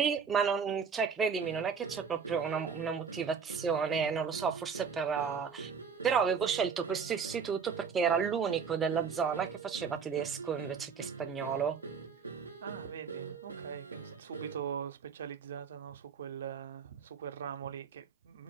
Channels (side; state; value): left; quieter; 6.2 dB